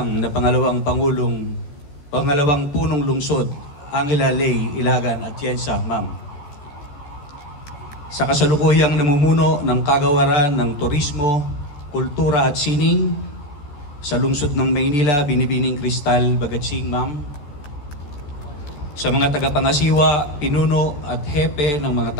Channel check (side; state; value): right; late; 14 ms